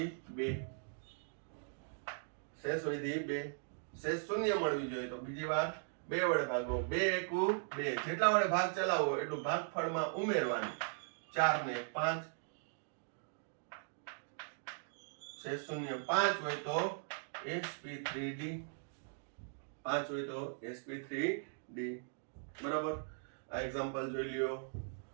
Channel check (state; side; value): silent; left; digital silence